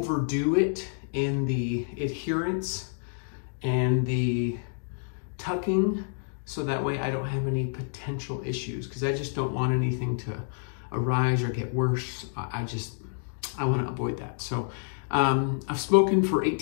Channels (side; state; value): right; silent; digital silence